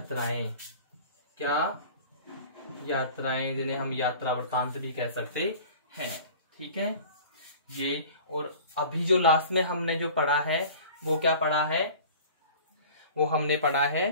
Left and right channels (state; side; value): inverted; both; correlation -0.42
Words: क्या, यात्राएं, जिन्हें हम यात्रा वृत्तांत भी कह सकते हैं, ठीक है ये। और अभी जो लास्ट में हमने जो पढ़ा है वो क्या पढ़ा है, वो हमने पढ़ा है